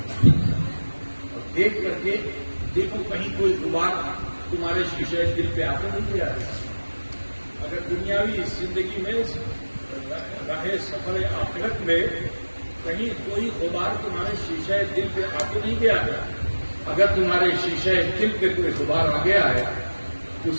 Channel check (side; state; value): both; inverted; correlation -1.00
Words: اور دیکھ کر کے دیکھو کہیں کوئی غبار تمہارے شیشے دل پہ آتے نہیں کیا ہے. اگر دنیاوی زندگی میں رہے سفر آخرت میں کہیں کوئی غبار تمہارے شیشے دل پہ آتے نہیں گیا ہے، اگر تمہارے شیشے دل پہ کوئی غبار آ گیا ہے تو